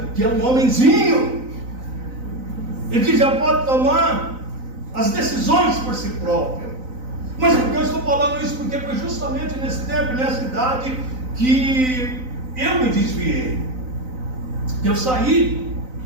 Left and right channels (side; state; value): left; late; 3.9 ms